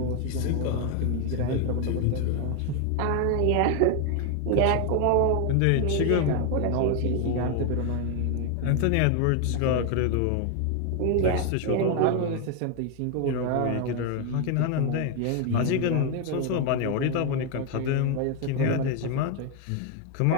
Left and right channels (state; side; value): different; both; correlation 0.01